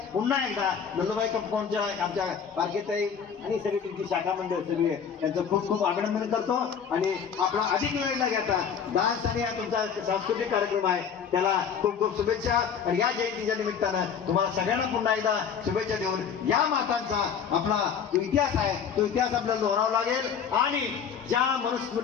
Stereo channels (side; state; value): right; quieter; 7.2 dB